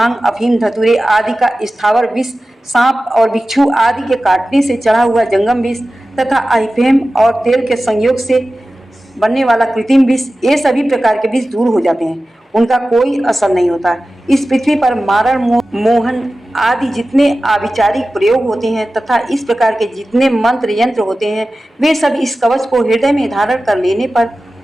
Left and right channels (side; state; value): both; normal; correlation 0.95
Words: अफीम धतूरे आदि का स्थावर विष, सांप और बिच्छू आदि के काटने से चढ़ा हुआ जंगम विष तथा अफीम और तेल के संयोग से बनने वाला कृत्रिम विष, ये सभी प्रकार के विष दूर हो जाते हैं। उनका कोई असर नहीं होता। इस पृथ्वी पर मारण मोहन आदि जितने आविचारिक प्रयोग होते हैं तथा इस प्रकार के जितने मंत्र यंत्र होते हैं वे सब इस कवच को हृदय में धारण कर लेने पर